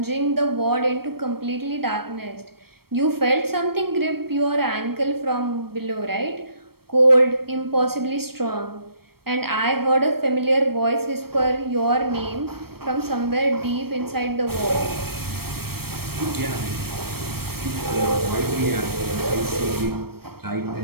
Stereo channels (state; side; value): late; left; 0.95 ms